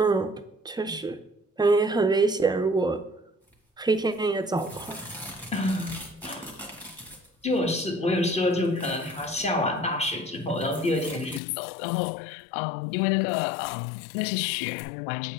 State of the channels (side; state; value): right; drops out; at 11.4 s